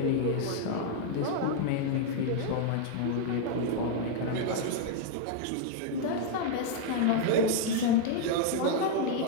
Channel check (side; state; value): both; different; correlation 0.00